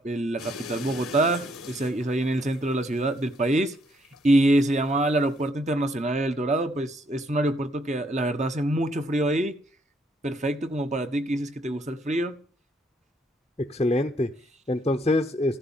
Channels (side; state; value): both; normal; correlation 0.71